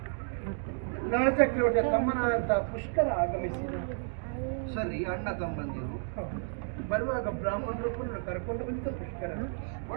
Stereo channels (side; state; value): left; silent; 57 dB below the other